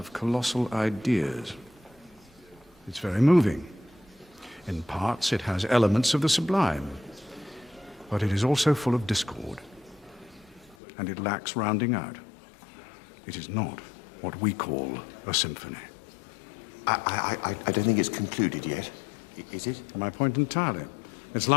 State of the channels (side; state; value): right; drops out; at 10.8 s